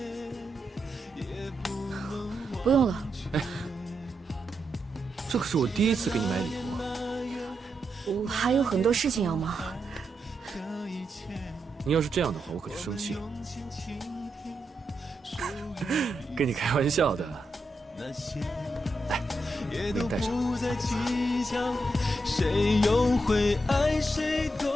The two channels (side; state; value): both; normal; correlation 0.84